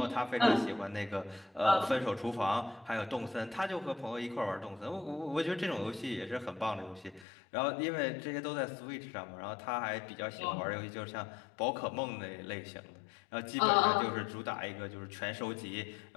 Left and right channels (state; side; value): drops out; right; at 7.2 s